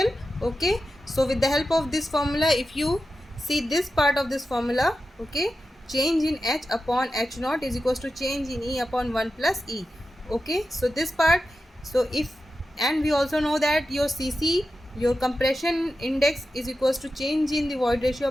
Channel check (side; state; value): both; normal; correlation 0.91